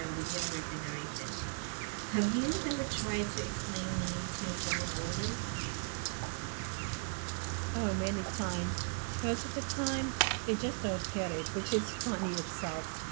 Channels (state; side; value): silent; left; 53 dB below the other